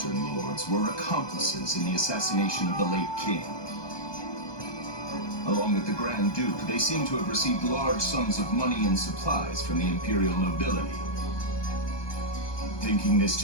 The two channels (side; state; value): right; late; 1.2 ms